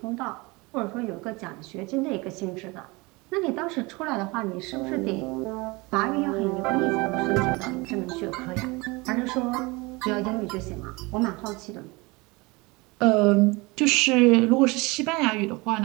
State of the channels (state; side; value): quieter; left; 24.8 dB